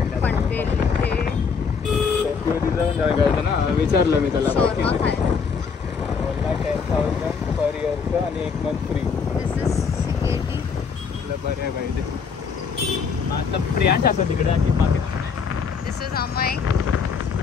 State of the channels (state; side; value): quieter; right; 5.8 dB